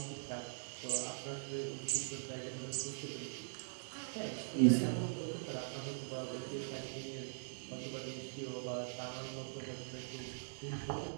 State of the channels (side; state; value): left; silent; digital silence